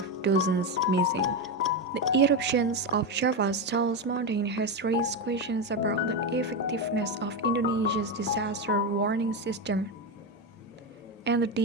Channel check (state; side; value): normal; both; correlation 0.12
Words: dozens missing. The eruptions of Java's tallest mountain has raised questions about the effectiveness of Indonesia's disaster warning system and the